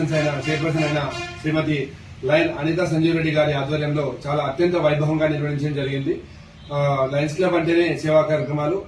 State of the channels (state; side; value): identical; both; correlation 1.00